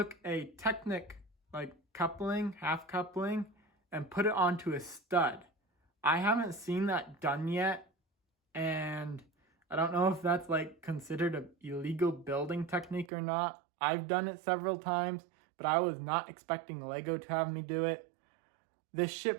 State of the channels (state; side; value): drops out; left; at 13.1 s